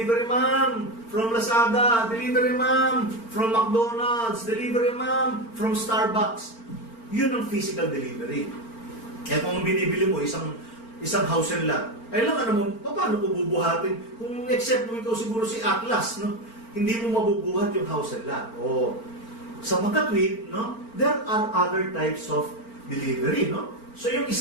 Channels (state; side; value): late; right; 4.4 ms